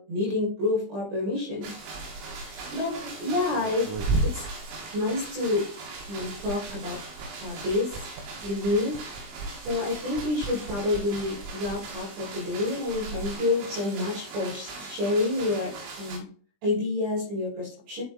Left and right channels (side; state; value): left; late; 20 ms